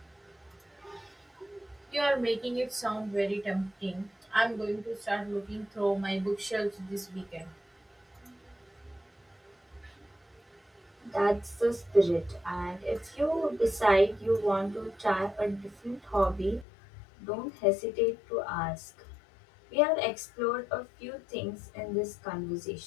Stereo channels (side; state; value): right; drops out; at 16.7 s